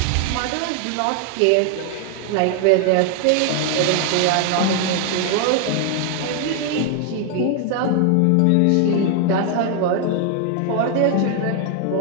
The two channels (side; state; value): both; different; correlation 0.00